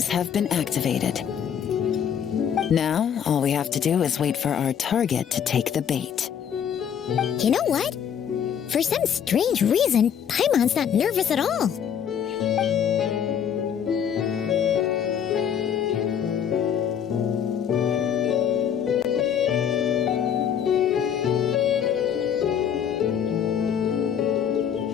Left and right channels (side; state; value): right; quieter; 8.4 dB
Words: have been activated. Now, all we have to do is wait for our target to take the bait. You know what? For some strange reason, Paimon's not nervous at all.